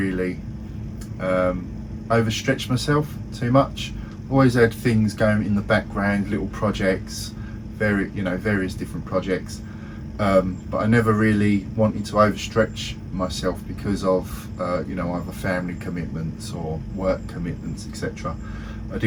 overstretched myself too much. Always had things going in the background, little projects, various different projects. But I never really wanted to overstretch myself because of either family commitments or work commitments, etc. I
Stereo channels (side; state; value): both; identical; correlation 1.00